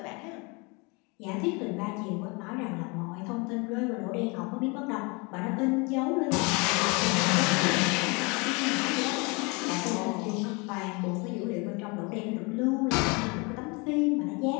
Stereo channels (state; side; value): quieter; right; 29.3 dB